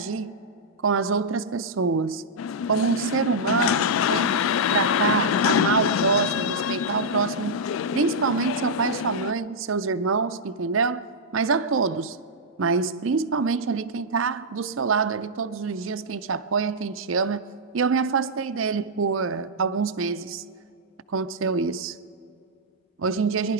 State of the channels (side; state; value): both; normal; correlation -0.08